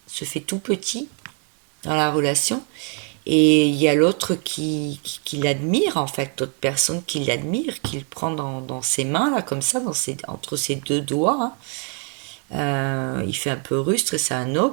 se fait tout petit dans la relation. Et il y a l'autre qui l'admire, en fait, d'autres personnes qui l'admirent, qui le prend dans ses mains, là, comme ça, entre ses deux doigts. Hein. Il fait un peu rustre et c'est un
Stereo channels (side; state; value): left; quieter; 39.0 dB